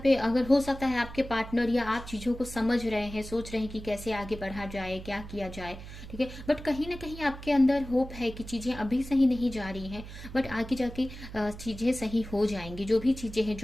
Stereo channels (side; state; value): right; noise; hum, 13 dB below the sound